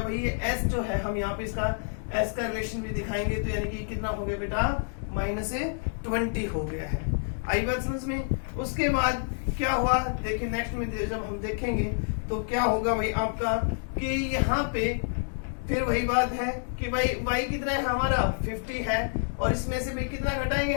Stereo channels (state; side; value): silent; right; digital silence